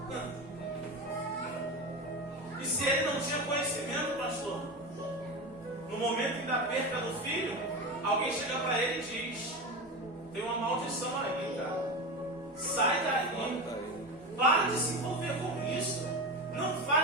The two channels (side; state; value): both; normal; correlation 0.23